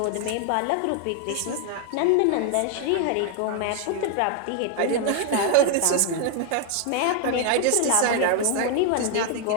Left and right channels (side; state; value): both; different; correlation 0.00